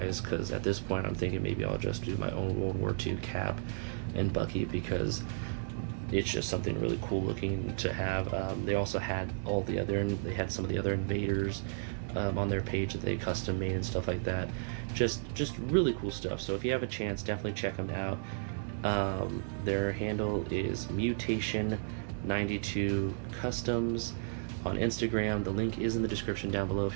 because at this point I'm thinking maybe I'll just do my own World War II Cap and Bucky, because it's just something really cool looking to have. They also had they had some of the other invaders on their page that they custom made and stuff like that. Just really cool stuff. So if you have a chance, definitely check them out. Their handle is Mutation92 Customs on Instagram. The link is in the description down below if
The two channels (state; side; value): silent; left; digital silence